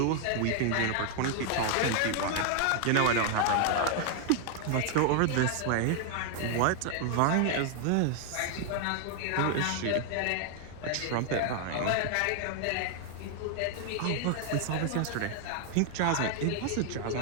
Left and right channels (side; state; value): both; different; correlation 0.00